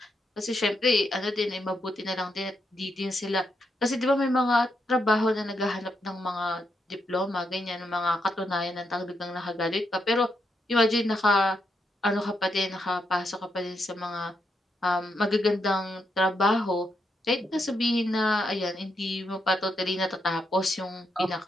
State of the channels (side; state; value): both; normal; correlation 0.81